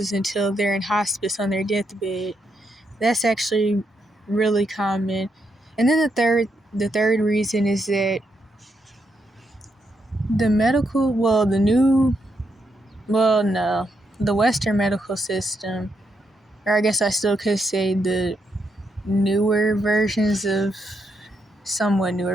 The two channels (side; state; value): both; normal; correlation 0.80